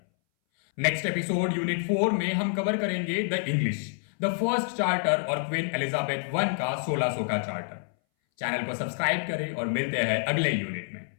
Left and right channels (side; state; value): right; silent; 60 dB below the other